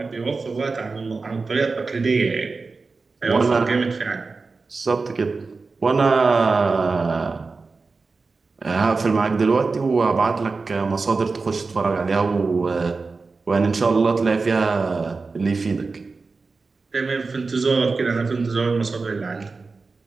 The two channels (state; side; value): quieter; left; 4.1 dB